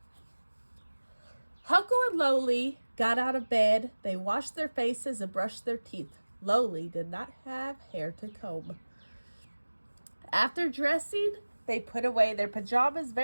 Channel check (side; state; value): both; inverted; correlation -1.00